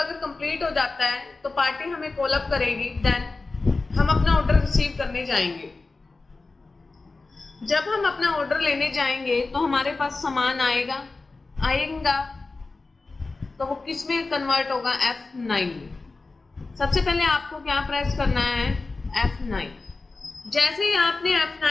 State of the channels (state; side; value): quieter; right; 3.7 dB